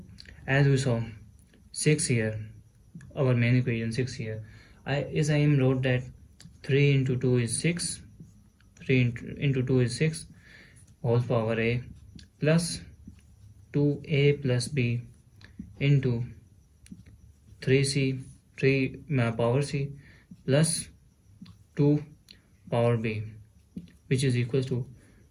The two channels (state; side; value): identical; both; correlation 1.00